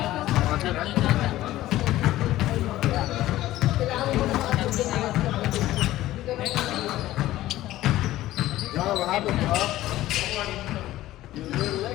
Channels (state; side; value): quieter; right; 15.3 dB